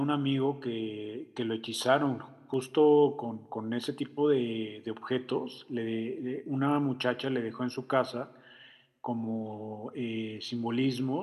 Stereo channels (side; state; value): both; identical; correlation 1.00